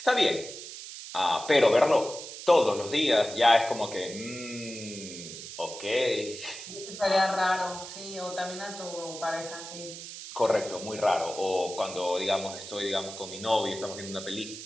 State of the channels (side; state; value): right; noise; hiss, 11 dB below the sound